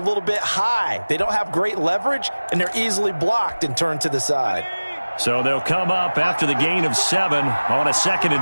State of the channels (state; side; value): inverted; both; correlation -1.00